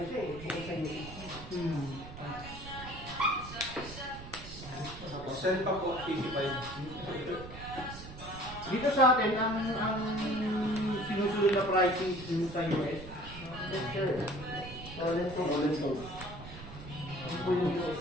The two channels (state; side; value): noise; right; rumble, 13 dB below the sound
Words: siya eh. Bukod sa UC. Send pa po, 85. Dito sa atin, ang sinusunod na pricing yung sa US. Yes, sir. Roland to. Ano po yung US?